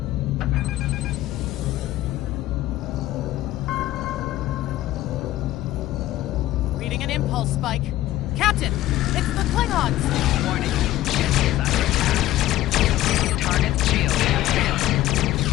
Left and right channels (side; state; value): right; quieter; 15.0 dB